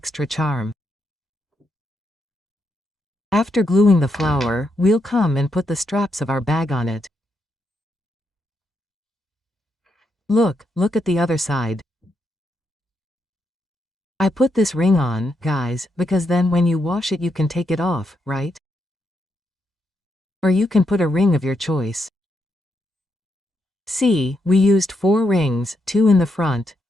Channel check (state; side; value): normal; both; correlation 0.81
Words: charm. After gluing the flower, we'll come and put the straps of our bag on it. Look at the other side. I put this ring on, guys, because then when you wash it you can take it off, right? Or you can put a ring of your choice. See, we used 4 rings, 2 in the front,